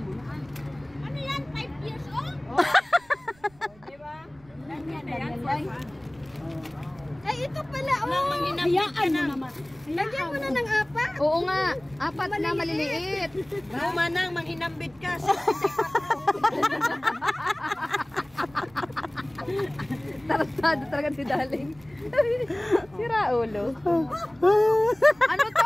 na. Ano yan? 5 years old? Diba? Ganyan yan. Ay, ito pala, oh. Hayaan mo naman. Lagyan mo na ng 4. Oo nga, 4 na maliliit. Manang, manghinambit ka. Tarantado talaga si Daling. Si Raulo. Ano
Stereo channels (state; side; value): noise; right; rumble, 28 dB below the sound